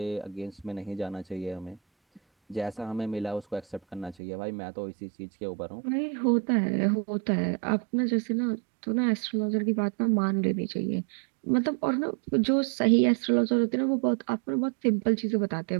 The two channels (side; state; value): left; drops out; at 4.2 s